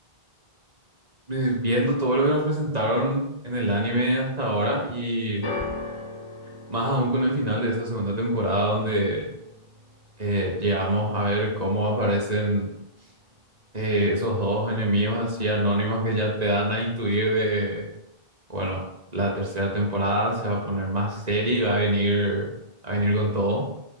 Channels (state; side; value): late; left; 1.9 ms